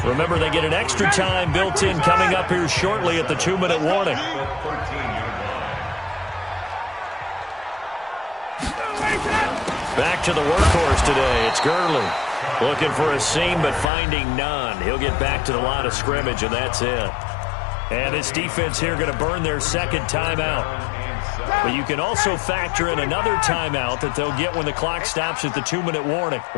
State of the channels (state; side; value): drops out; right; at 13.9 s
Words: Remember, they get an extra time built in coming up here shortly at the 2-minute warning. Back to the workhorse today. It's Gurley. Looking for a seam, but finding none. He'll get back to the line of scrimmage, and that's it. And this defense here going to burn their 2nd timeout. But you can also factor in another timeout that they'll get when the clock stops at the 2-minute warning.